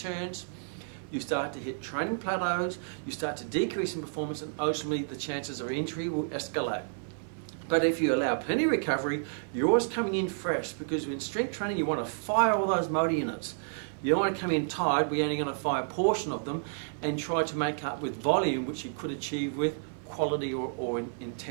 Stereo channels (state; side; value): silent; left; 56 dB below the other